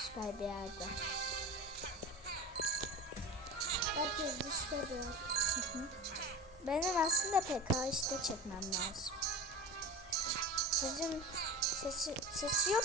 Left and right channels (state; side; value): normal; both; correlation 0.32